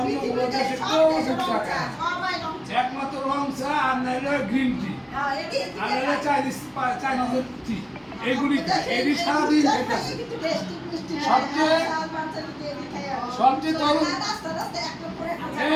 কোনো দেশে কেউ দুধ চা খায় একমাত্র রং চা আর নাইলে গ্রিন টি আর নাইলে চাইনিজের টি এগুলি এগুলি সারাদিন সবচেয়ে তরুণ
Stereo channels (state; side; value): identical; both; correlation 1.00